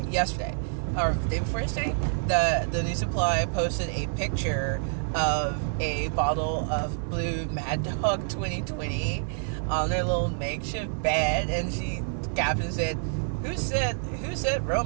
or the day before yesterday, the new supply posted a picture of a bottle of blue Mad Dog 2020 on their little makeshift bed, and she captioned said, who said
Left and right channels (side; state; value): left; silent; digital silence